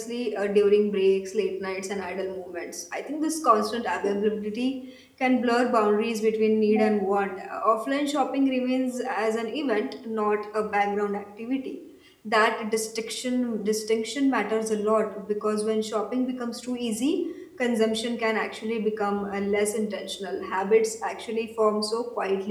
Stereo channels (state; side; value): identical; both; correlation 1.00